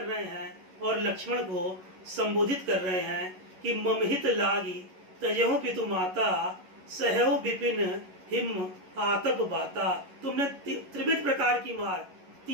रहे हैं, और लक्ष्मण को संबोधित कर रहे हैं कि ममहित लागी तजेहु पितु माता, सहौ विपिन हिम आतप बाता। तुमने त्रिविध प्रकार की मार,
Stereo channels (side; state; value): left; late; 11 ms